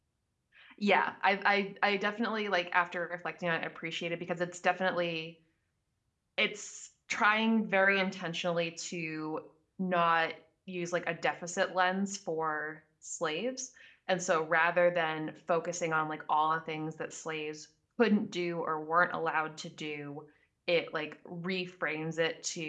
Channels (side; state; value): both; identical; correlation 1.00